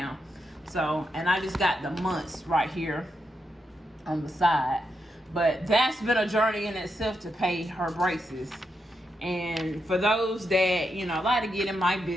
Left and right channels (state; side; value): normal; both; correlation 0.84